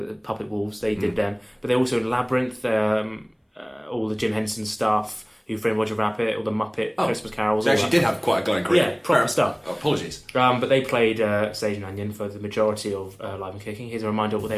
Puppet Wolves, they did them. But they also Labyrinth, all the Jim Henson stuff, Who Framed Roger Rabbit, all the Muppet Christmas carols. They actually did have quite a glowing career. Yeah, proper stuff. Oh, apologies. But they played Sage and Onion for the majority of Live and Kicking. Here's a reminder of what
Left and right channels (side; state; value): both; identical; correlation 1.00